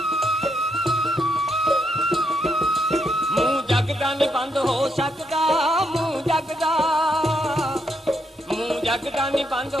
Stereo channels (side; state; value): both; normal; correlation 0.78